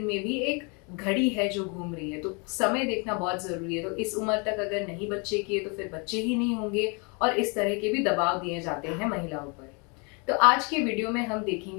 में भी एक घड़ी है जो घूम रही है। तो समय देखना बहुत जरूरी है। तो इस उम्र तक अगर नहीं बच्चे किए तो फिर बच्चे ही नहीं होंगे, और इस तरह के भी दबाव दिए जाते हैं महिलाओं पर। तो आज के वीडियो में हम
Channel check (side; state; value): right; quieter; 33.0 dB